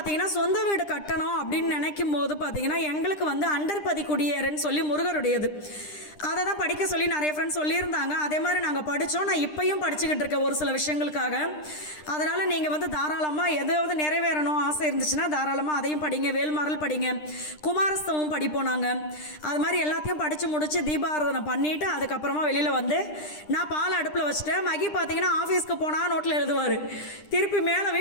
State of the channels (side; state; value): right; late; 9.9 ms